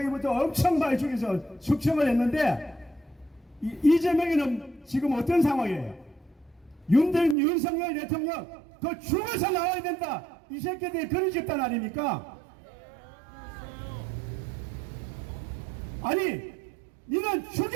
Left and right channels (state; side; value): drops out; left; at 7.4 s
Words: 엄청 많이 죽여서 숙청을 했는데, 이재명이는 지금 어떤 상황이에요? 윤석열 대통령 그 죽어서 나와야 된다, 이 새끼들이 그런 집단 아닙니까? 아니, 니는